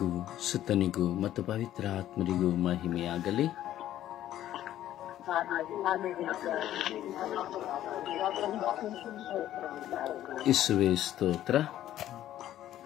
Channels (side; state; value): right; quieter; 12.6 dB